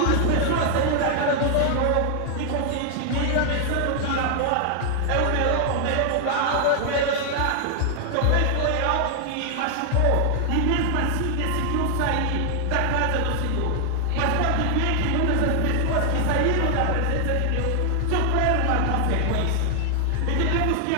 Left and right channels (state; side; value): different; both; correlation 0.00